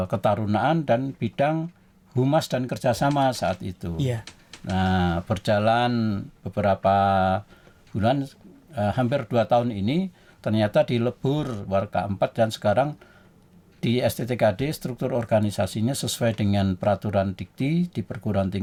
ketarunaan dan bidang humas dan kerjasama saat itu. Nah, berjalan beberapa bulan, hampir 2 tahun ini, ternyata dilebur Waka 4 dan sekarang di STTKD struktur organisasinya sesuai dengan peraturan dikti di perguruan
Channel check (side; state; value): both; identical; correlation 1.00